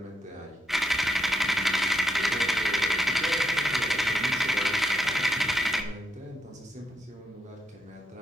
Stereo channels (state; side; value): normal; both; correlation 0.80